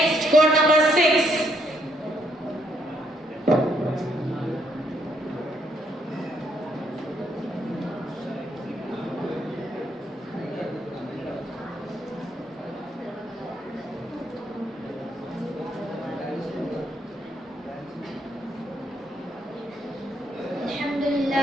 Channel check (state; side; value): normal; both; correlation 0.72